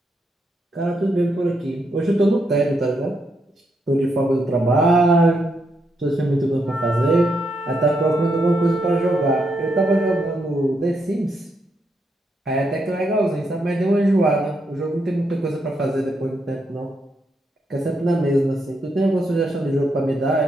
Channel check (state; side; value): normal; both; correlation 0.80